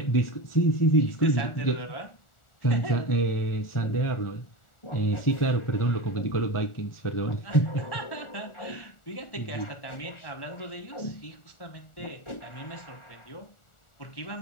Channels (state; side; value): late; right; 1.4 ms